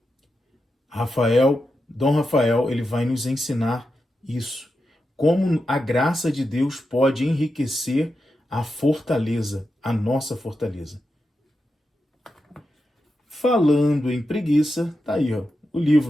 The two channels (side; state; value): both; normal; correlation 0.88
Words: Dom Rafael, ele vai nos ensinar isso. Como a graça de Deus pode enriquecer a fortaleza, a nossa fortaleza. Falando em preguiça, tá aí, ó, o